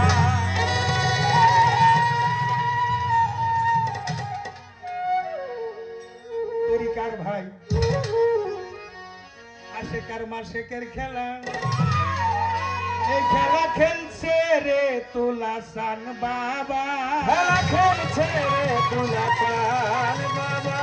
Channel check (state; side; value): identical; both; correlation 1.00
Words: তরিকার ভাই আশেকার মাসেকের খেলা এই খেলা খেলছে রে তুলাসান বাবা খেলা খেলছে রে তুলাসান বাবা